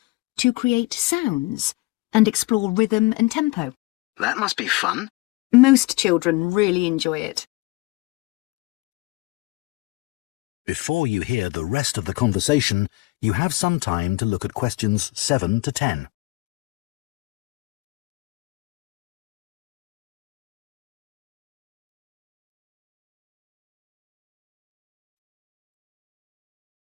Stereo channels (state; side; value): quieter; right; 23.3 dB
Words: to create sounds and explore rhythm and tempo. That must be fun. Most children really enjoy it. Before you hear the rest of the conversation, you have some time to look at questions 7 to 10.